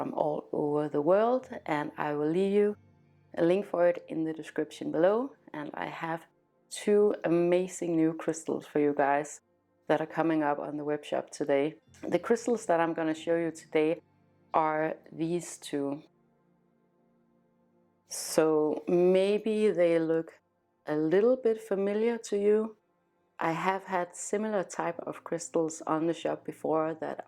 all over the world, and I will leave you a link for it in the description below. And I have 2 amazing new crystals for you guys that are coming up on the web shop today. The crystals that I'm going to show you today are these 2. So maybe they look a little bit familiar to you. I have had similar type of crystals on the shop before that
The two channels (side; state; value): both; identical; correlation 1.00